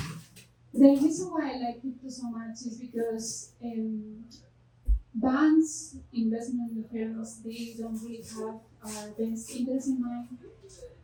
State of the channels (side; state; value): both; identical; correlation 1.00